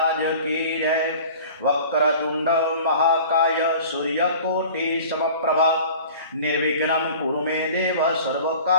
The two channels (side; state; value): both; inverted; correlation -0.43